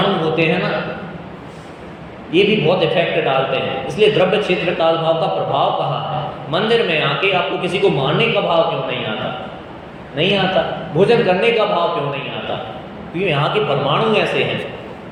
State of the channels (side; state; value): both; identical; correlation 1.00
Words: होते हैं ना, ये भी बहुत इफेक्ट डालते हैं। इसलिए द्रव्य क्षेत्र काल भाव का प्रभाव कहाँ है? मंदिर में आके आपको किसी को मारने का भाव क्यों नहीं आता? नहीं आता। भोजन करने का भाव क्यों नहीं आता? क्योंकि यहाँ के परमाणु ऐसे हैं।